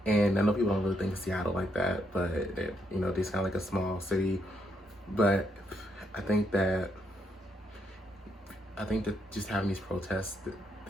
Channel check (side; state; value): both; normal; correlation 0.77